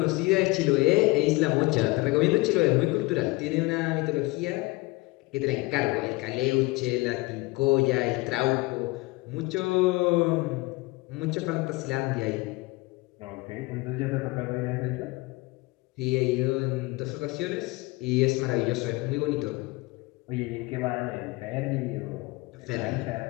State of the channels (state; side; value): quieter; right; 22.7 dB